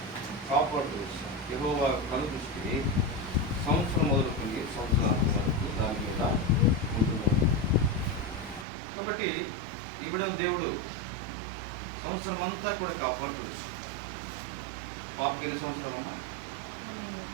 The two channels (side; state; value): left; drops out; at 8.7 s